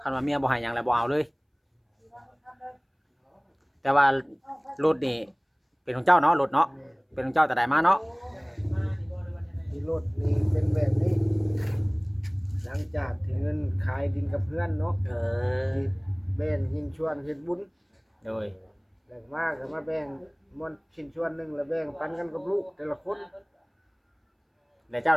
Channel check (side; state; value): both; identical; correlation 1.00